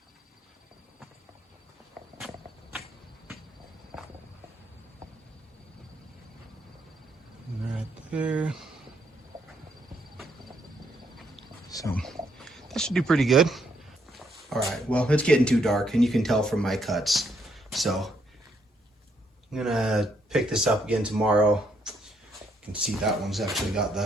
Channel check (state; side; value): normal; both; correlation 0.73